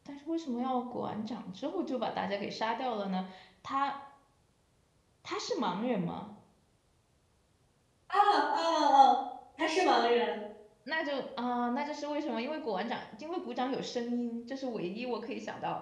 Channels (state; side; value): identical; both; correlation 1.00